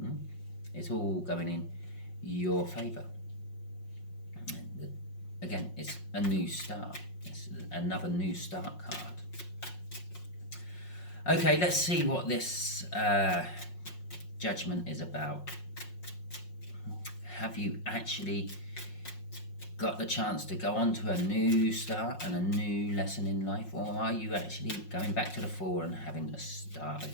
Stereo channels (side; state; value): right; late; 5.5 ms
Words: It's all going in your favour. Again, it's a new start. It's another new start card. Okay, let's see what this judgment is about. Have you actually got the chance to go on to a new start and a new lesson in life, or are you actually going back to the Four and having to start